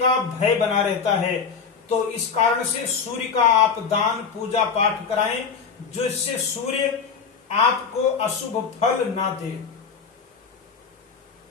भय बना रहता है। तो इस कारण से सूर्य का आप दान पूजा पाठ कराएं, जिससे सूर्य आपको अशुभ फल ना दे।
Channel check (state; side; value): quieter; right; 6.0 dB